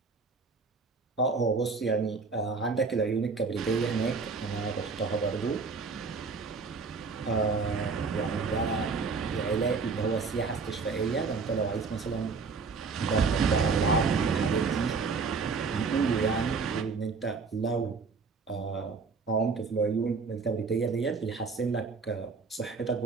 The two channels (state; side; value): quieter; left; 4.7 dB